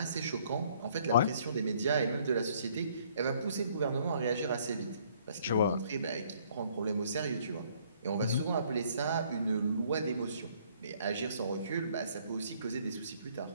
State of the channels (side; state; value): both; inverted; correlation -0.63